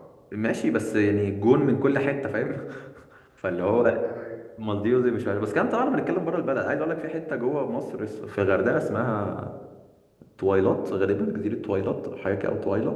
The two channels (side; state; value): both; identical; correlation 1.00